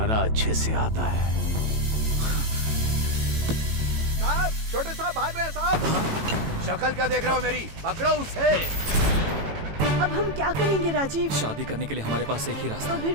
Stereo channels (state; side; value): late; left; 18 ms